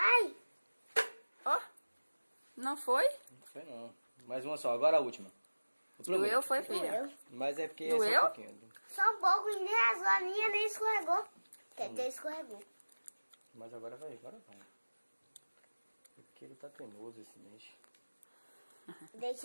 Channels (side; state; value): both; inverted; correlation -1.00